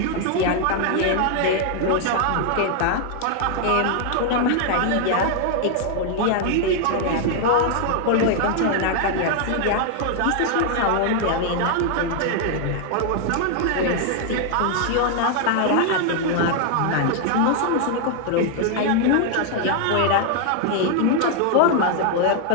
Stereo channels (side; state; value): both; different; correlation 0.00